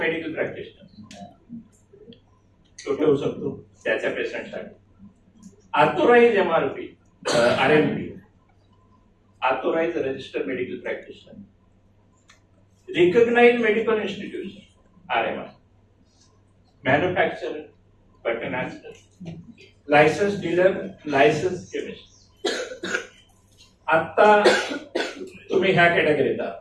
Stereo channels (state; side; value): identical; both; correlation 1.00